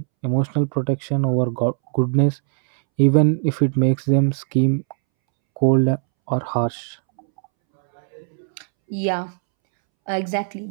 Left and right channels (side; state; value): left; silent; 66 dB below the other